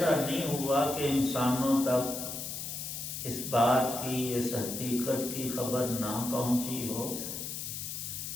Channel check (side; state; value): left; noise; hiss, 6 dB below the sound